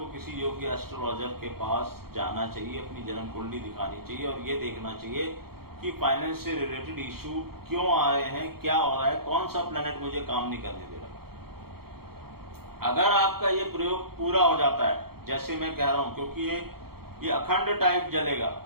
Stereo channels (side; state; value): left; late; 0.94 ms